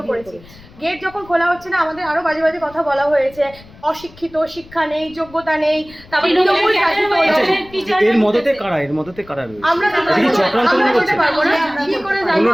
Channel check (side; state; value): left; noise; rumble, 23 dB below the sound